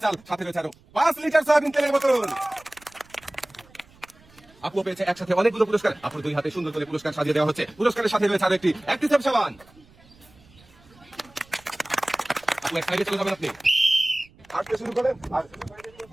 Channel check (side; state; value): right; noise; rumble, 28 dB below the sound